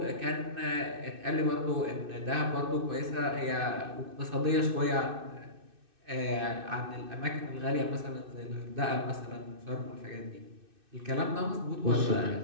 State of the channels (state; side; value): late; left; 2.6 ms